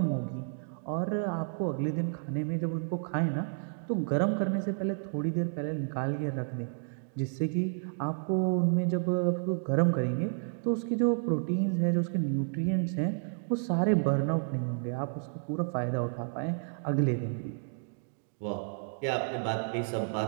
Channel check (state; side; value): silent; left; digital silence